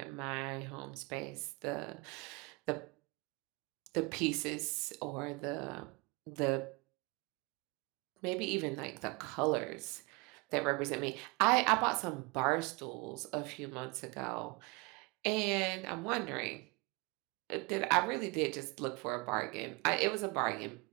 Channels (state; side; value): quieter; left; 26.9 dB